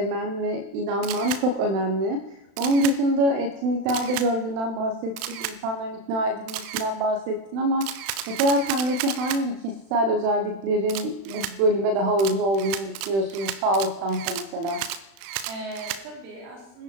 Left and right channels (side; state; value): left; late; 36 ms